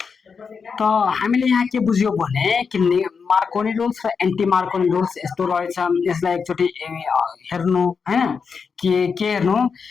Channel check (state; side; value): quieter; right; 5.7 dB